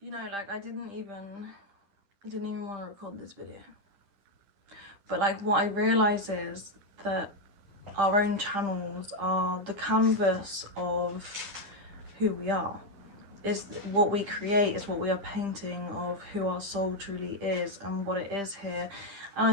You know, like I didn't even want to record this video. But like what I realise is that our own channels are the canvas of who we are. Is what we create, is what we are painting of who our soul truly is and what it is here. And I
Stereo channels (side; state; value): left; late; 10 ms